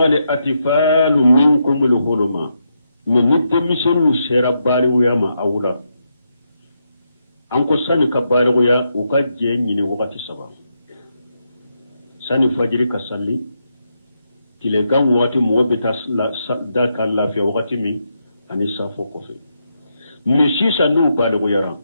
الأطفال منكم الحلم من نتمسن الشربال ويما أولا anko sani ka baligoya u ka je ɲini wagati saba sani fajiri ka salli tilegan wagati mɔgɔ bɛ taa da ka lafiya wagati min ani safo kɔfɛ mɛ sisan n'u baligoyara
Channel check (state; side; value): inverted; both; correlation -0.82